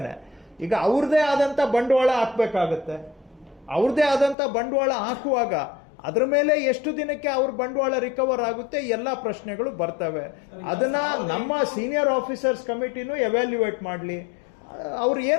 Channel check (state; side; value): drops out; right; at 4.4 s